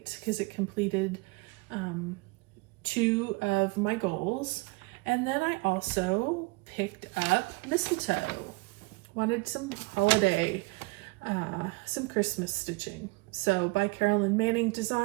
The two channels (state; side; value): quieter; left; 25.7 dB